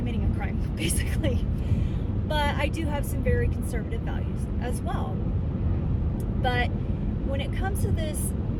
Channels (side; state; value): both; identical; correlation 1.00